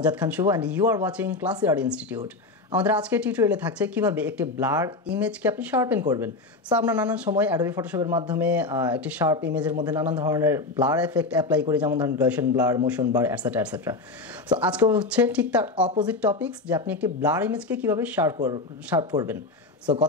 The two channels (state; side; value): quieter; right; 3.4 dB